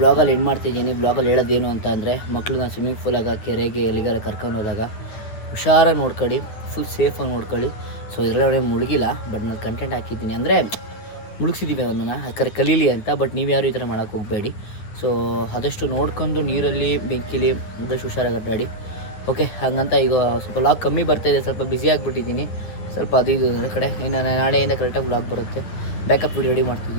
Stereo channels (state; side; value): late; right; 9.8 ms